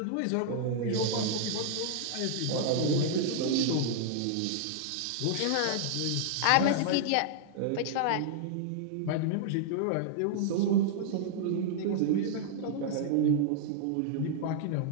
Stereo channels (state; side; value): different; both; correlation -0.01